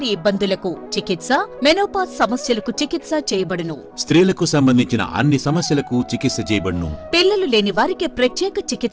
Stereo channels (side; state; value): both; identical; correlation 1.00